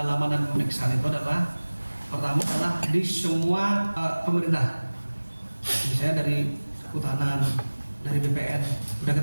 dan pemeriksaan itu adalah pertama adalah di semua pemerintah, misalnya dari Kehutanan, dari BPN, sudah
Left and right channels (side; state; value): both; inverted; correlation -1.00